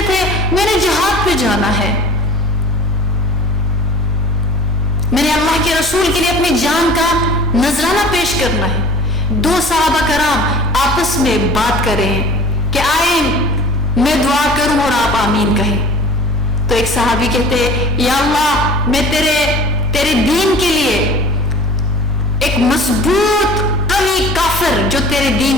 تھے میں نے جہاد پہ جانا ہے، میں نے اللہ کے رسول کے لیے اپنی جان کا نذرانہ پیش کرنا ہے۔ دو صحابہ کرام آپس میں بات کر رہے ہیں کہ آئے میں دعا کروں اور آپ آمین کہیں۔ تو ایک صحابی کہتے یا اللہ میں تیرے دین کے لیے ایک مضبوط قوی کافر جو تیرے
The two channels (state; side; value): normal; both; correlation 0.45